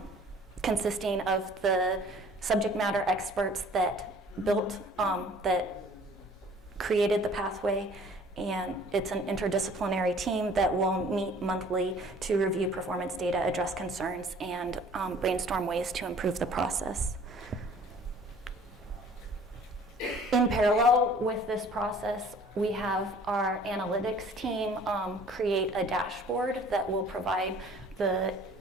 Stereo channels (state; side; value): normal; both; correlation 0.52